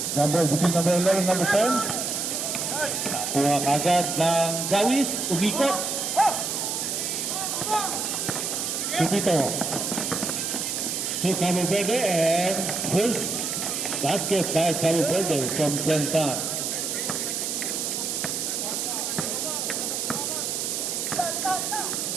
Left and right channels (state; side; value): noise; right; hiss, 1 dB below the sound